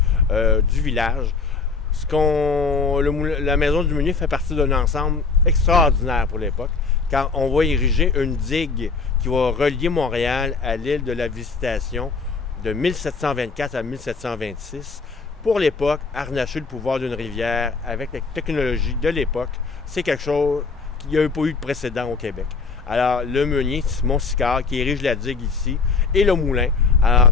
du village. La Maison du Meunier fait partie d'un ensemble extraordinaire pour l'époque, car on va ériger une digue qui va relier Montréal à l'île de la Visitation de 1724 à 1726. Pour l'époque, harnacher le pouvoir d'une rivière avec la technologie de l'époque, c'est quelque chose qui n'y a pas eu de précédent au Québec. Alors, le meunier, Simon Sicard, qui érige la digue ici, et le moulin. Alors,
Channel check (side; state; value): right; quieter; 4.7 dB